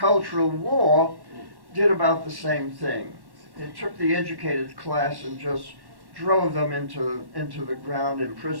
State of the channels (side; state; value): left; late; 1.1 ms